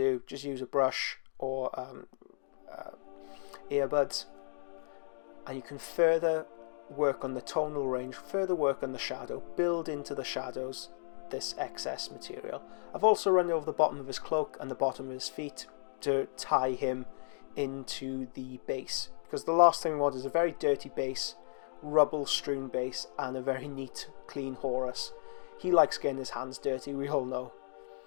just use a brush or earbuds, and you can further work on the tonal range, further work on the shadow, build into the shadows this excess material. I've also run over the bottom of his cloak and the bottom of his feet to tie him into the base, because the last thing we want is a very dirty base, rubble strewn base, and a very neat clean Horus. He likes getting his hands dirty, we all know.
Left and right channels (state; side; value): silent; right; digital silence